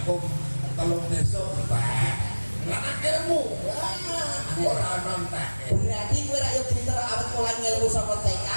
telung desa mbak. Lah ilmu ora ono entake. berarti kowe ra yo pinter awet mulai ngelmu saka TK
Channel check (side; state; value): both; inverted; correlation -1.00